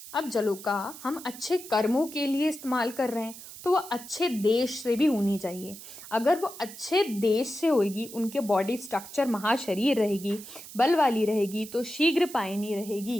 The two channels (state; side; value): noise; right; hiss, 15 dB below the sound